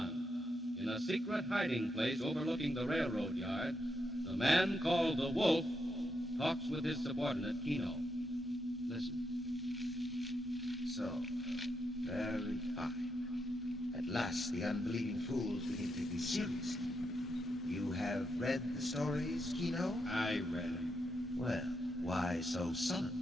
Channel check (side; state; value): both; normal; correlation 0.82